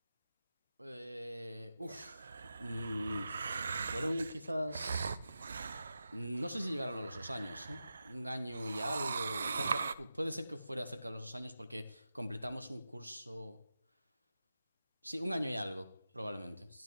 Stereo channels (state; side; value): inverted; both; correlation -0.92